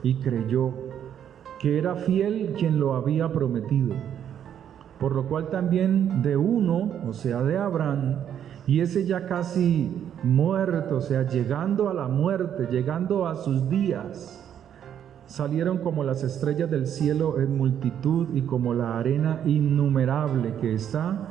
y creyó que era fiel quien lo había prometido. Por lo cual también de uno, o sea de Abraham, y ese ya casi muerto, o sea llegando a la muerte, llegando a sus días, salieron como las estrellas del cielo en multitud y como la arena innumerable que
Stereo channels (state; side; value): quieter; left; 9.4 dB